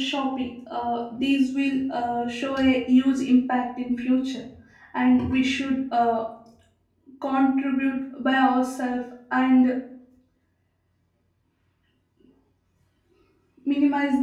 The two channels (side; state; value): both; identical; correlation 1.00